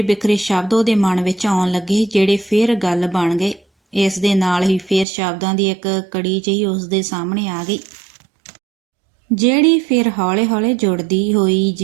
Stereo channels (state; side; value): drops out; left; at 5.1 s